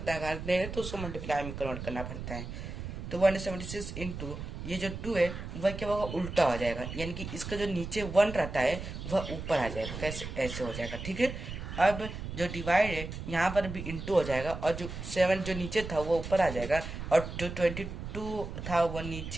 है करते हैं तो उसको मल्टीप्लाई में कन्वर्ट करना पड़ता है। तो 176 इंटू ये जो 2 है वह क्या होगा, उल्टा हो जाएगा, यानी कि इसका जो नीचे 1 रहता है वह ऊपर आ जाएगा। कैसे, ऐसे हो जाएगा, ठीक है। अब जो डिवाइड है यहाँ पर भी इंटू हो जाएगा, और जो 7 जो नीचे था वो ऊपर आ जाएगा, और जो 22 था वो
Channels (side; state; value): right; noise; rumble, 8 dB below the sound